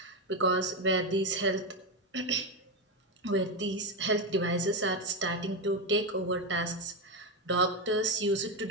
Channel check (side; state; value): both; normal; correlation 0.10